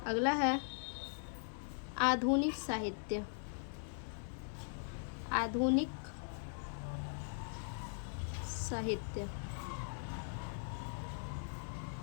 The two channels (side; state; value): right; silent; digital silence